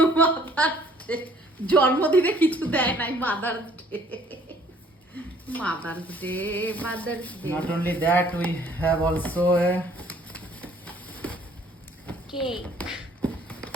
মাদার্স ডে জন্মদিনে কিছু দেয় নাই। Mother's day, mother's day, mother's day. Not only that, we have also a cake.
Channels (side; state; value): both; normal; correlation 0.58